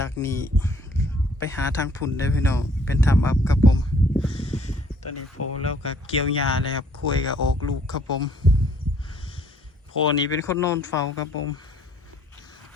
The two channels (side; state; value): both; normal; correlation 0.61